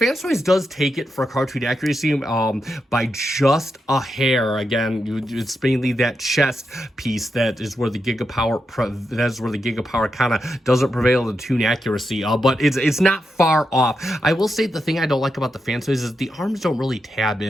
Toys does take it for cartoon accuracy by just a hair. Again, it's mainly that chest piece that is where the GIGAPOWER kind of doesn't prevail in tune accuracy, but it's not far off. I will say the thing I don't like about the Fans Toys is the arms don't really tab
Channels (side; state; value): both; normal; correlation 0.86